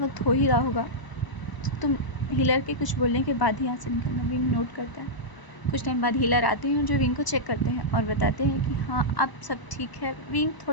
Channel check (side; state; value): right; late; 1.0 ms